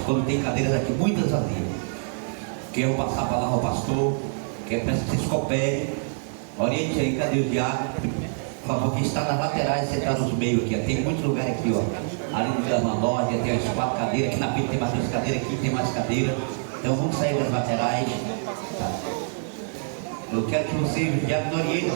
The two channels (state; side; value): silent; left; digital silence